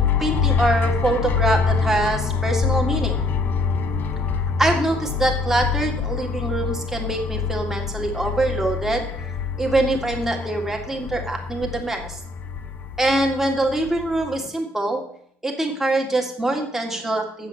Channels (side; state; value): both; normal; correlation 0.65